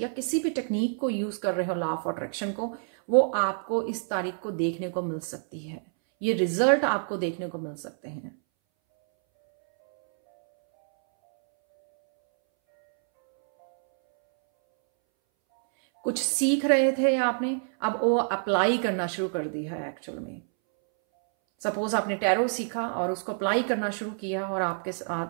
किसी भी टेक्निक को यूज कर रहे हो लॉ ऑफ अट्रैक्शन को, वो आपको इस तारीख को देखने को मिल सकती है, ये रिजल्ट आपको देखने को मिल सकते हैं। कुछ सीख रहे थे आपने, अब वो अप्लाई करना शुरू कर दिया है एक्चुअल में। सपोज आपने टैरो सीखा और उसको अप्लाई करना शुरू किया और आपके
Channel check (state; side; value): silent; left; 60 dB below the other